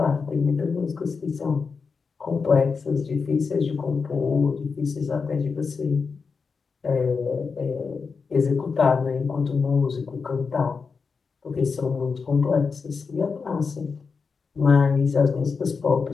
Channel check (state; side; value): quieter; right; 5.1 dB